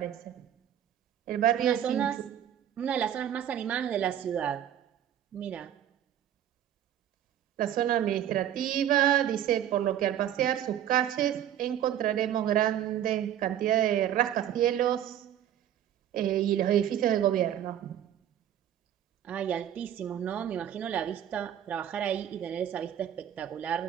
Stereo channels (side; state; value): left; quieter; 10.7 dB